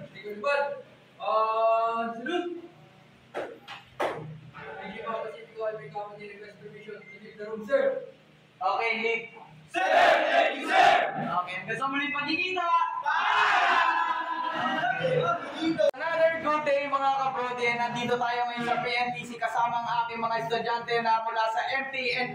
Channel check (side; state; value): both; identical; correlation 1.00